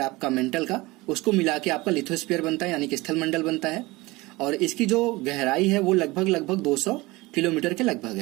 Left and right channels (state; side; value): quieter; left; 21.5 dB